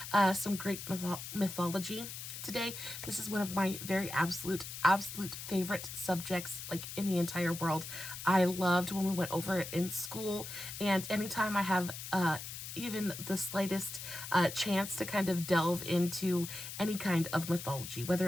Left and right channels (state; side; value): noise; left; hiss, 9 dB below the sound